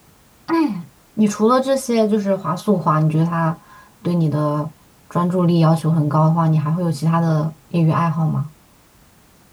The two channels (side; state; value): both; identical; correlation 1.00